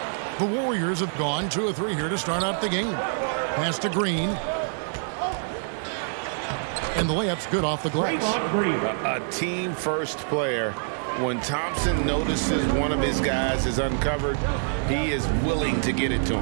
The Warriors have gone 2 of 3 here to start out the game. Pass to Green. And the layup's good off the glass. A team-first player. When Thompson notices one of his guys is uncovered, he is willing to get it to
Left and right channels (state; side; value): silent; left; digital silence